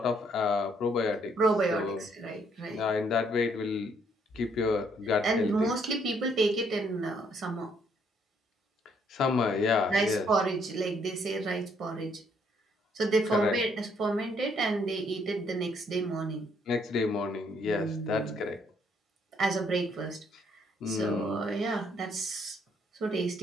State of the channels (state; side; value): normal; both; correlation 0.68